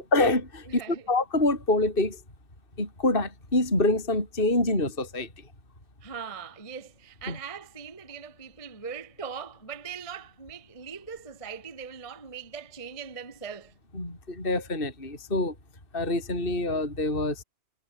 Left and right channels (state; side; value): late; right; 2.6 ms